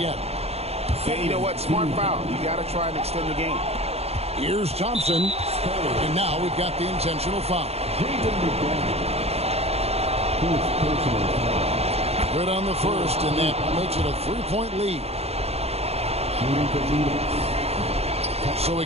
Yeah, you know what? Smart foul. You got to try and extend the game. Here's Thompson. And now we've got the intentional foul. Good on the first, and that makes it a 3-point lead. So he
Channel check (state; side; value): late; left; 0.30 ms